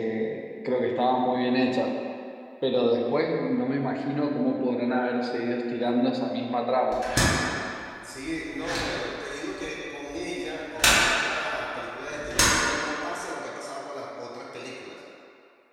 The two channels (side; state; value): both; identical; correlation 1.00